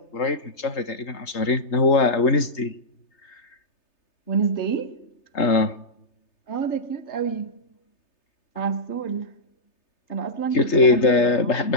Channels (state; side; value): late; right; 3.3 ms